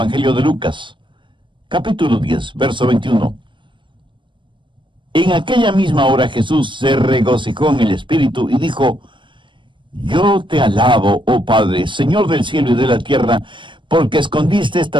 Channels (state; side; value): late; left; 0.24 ms